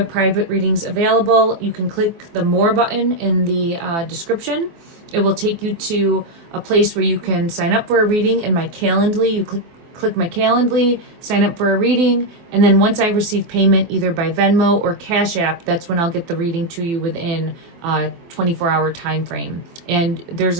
private readings available. You can click the More button in the description. It will take you to a place where you can sign up for a reading in my Calendly. You click my Calendly, sign up for a reading, and then once I receive payment, either by Venmo or Cash App, that's when I'll get the reading to you within a 24-hour time frame. And there's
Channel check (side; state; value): left; late; 24 ms